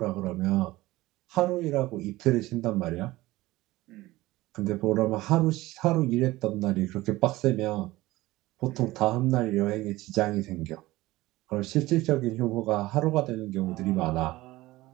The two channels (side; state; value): left; quieter; 18.4 dB